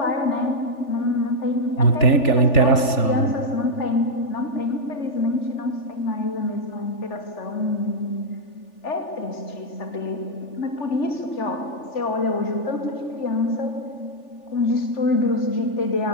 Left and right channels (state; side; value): late; right; 3.4 ms